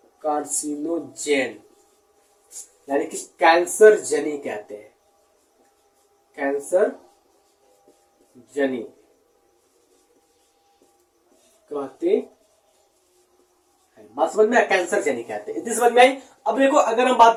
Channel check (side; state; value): both; identical; correlation 1.00